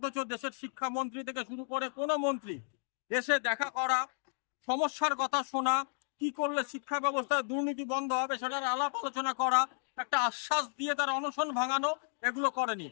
দেশের শিক্ষামন্ত্রী থেকে শুরু করে কোনো মন্ত্রী এসে দেখা করা, সমস্যার কথা শোনা, কি করলে শিক্ষা ব্যবস্থায় দুর্নীতি বন্ধ হবে সেটার আলাপ আলোচনা করা, একটা আশ্বাস দিয়ে তার অনশন ভাঙানো, এগুলো করেনি।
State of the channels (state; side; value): silent; right; digital silence